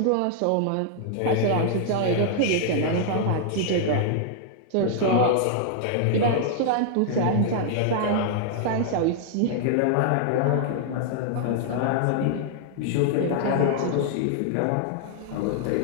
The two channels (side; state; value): both; different; correlation -0.01